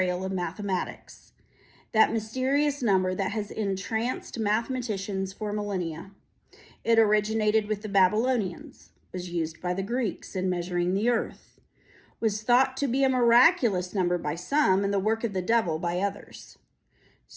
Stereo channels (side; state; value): both; identical; correlation 1.00